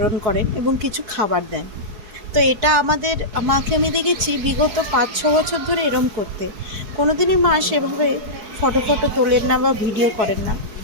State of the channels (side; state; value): left; late; 4.6 ms